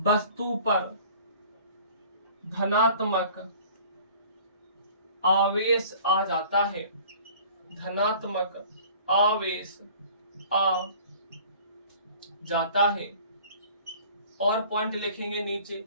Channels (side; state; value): both; inverted; correlation -0.49